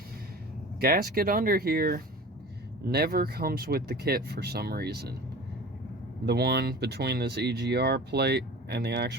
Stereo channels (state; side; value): normal; both; correlation 0.38